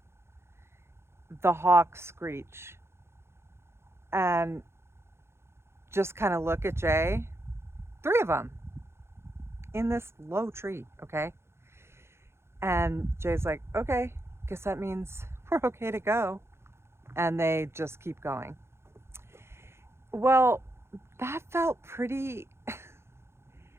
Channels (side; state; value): left; late; 0.12 ms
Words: The hawks screech and just kind of look at Jay. 3 of them in this low tree, okay? And Jay's like, okay, guess that means we're okay to go. And they just keep going. Well, that felt pretty